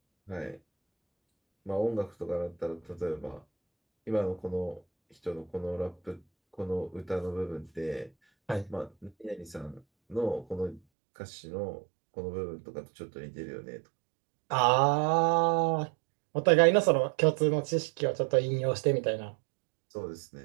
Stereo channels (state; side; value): drops out; left; at 10.8 s